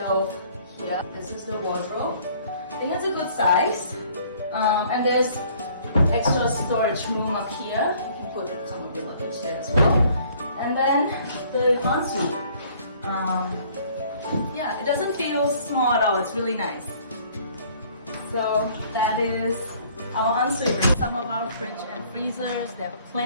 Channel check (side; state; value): both; inverted; correlation -0.57